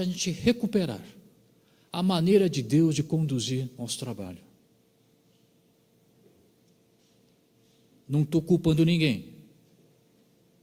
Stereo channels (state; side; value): identical; both; correlation 1.00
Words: gente recuperar a maneira de Deus de conduzir nosso trabalho. Não estou culpando ninguém,